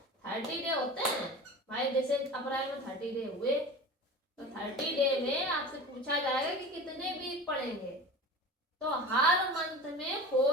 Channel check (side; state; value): both; normal; correlation 0.34